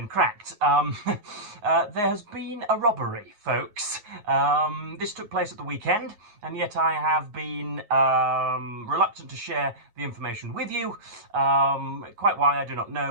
cracked. There has been a robbery, folks. This took place at the weekend, and yet I have been reluctant to share the information with you. Quite why, I do not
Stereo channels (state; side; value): late; left; 9.4 ms